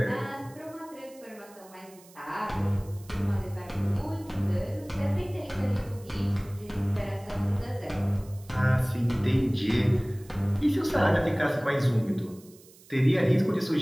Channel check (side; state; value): right; noise; hiss, 24 dB below the sound